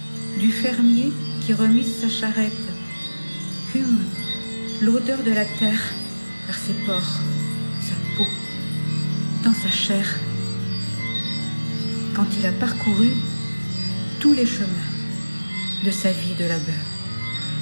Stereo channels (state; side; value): inverted; both; correlation -1.00